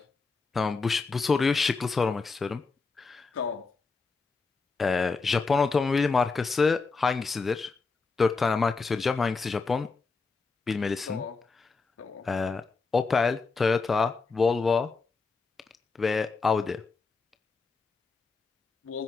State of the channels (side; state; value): right; quieter; 4.3 dB